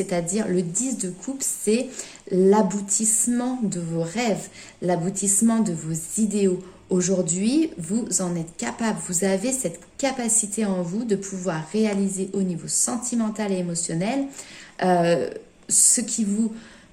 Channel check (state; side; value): identical; both; correlation 1.00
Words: le 10 de coupe, c'est l'aboutissement de vos rêves, l'aboutissement de vos idéaux. Aujourd'hui, vous en êtes capable, vous avez cette capacité en vous de pouvoir réaliser au niveau sentimental et émotionnel ce qui vous